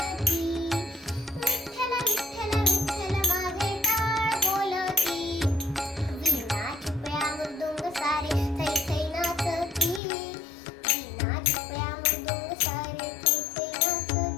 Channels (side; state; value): right; drops out; at 10.0 s